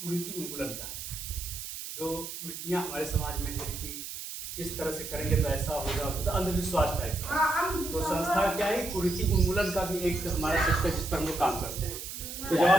कुरीति उन्मूलन का है। जो कुरीतियाँ हमारे समाज में है कि इस तरह से करेंगे तो ऐसा होगा, तो अंधविश्वास टाइप का। तो संस्था क्या है, कुरीति उन्मूलन का भी एक हमारा सेक्टर जिस पर हम लोग काम करते हैं। तो जब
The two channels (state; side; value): noise; right; hiss, 8 dB below the sound